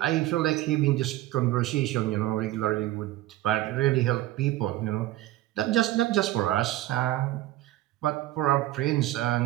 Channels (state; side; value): quieter; left; 15.5 dB